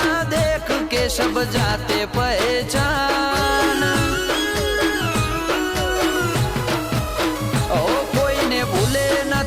देख के सब जाते पहचान ओ कोई ने भूले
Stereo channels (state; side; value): identical; both; correlation 1.00